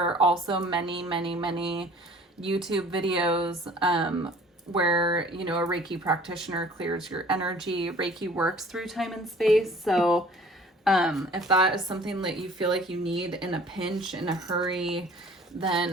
are also many, many, many YouTube videos where, you know, a Reiki practitioner clears your energy. Reiki works through time and space, so if that is something that you feel like you need in a pinch, in a hurry,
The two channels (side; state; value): both; normal; correlation 0.50